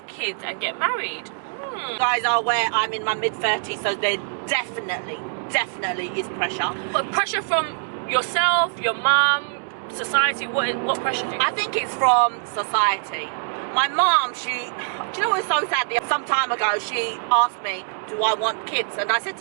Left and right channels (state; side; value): silent; left; digital silence